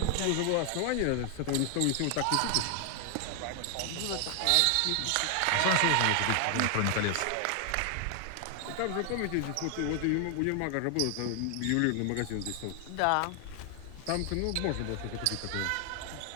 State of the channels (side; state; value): both; different; correlation 0.00